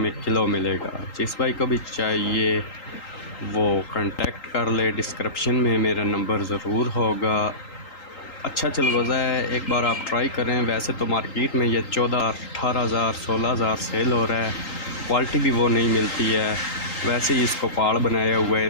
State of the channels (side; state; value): right; late; 3.8 ms